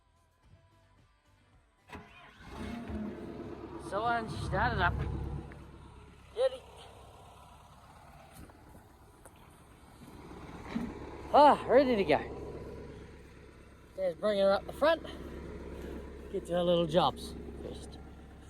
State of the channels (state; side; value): identical; both; correlation 1.00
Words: So I started up. Ready? Ready to go. Dad's bringing her up the front. Get to our little jobs first.